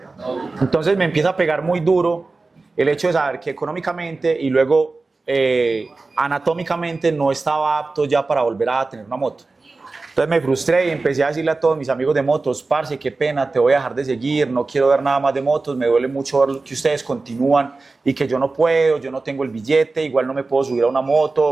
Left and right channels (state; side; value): quieter; left; 3.6 dB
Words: Entonces me empieza a pegar muy duro el hecho de saber que económicamente y luego anatómicamente no estaba apto ya para volver a tener una moto. Entonces me frustré y empecé a decirle a todos mis amigos de motos, parce, qué pena, te voy a dejar de seguir, no quiero ver nada más de motos, me duele mucho ver que ustedes continúan y que yo no puedo, yo no tengo el billete, igual no me puedo subir a una